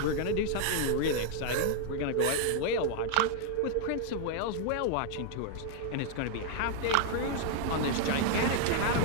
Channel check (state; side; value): different; both; correlation 0.00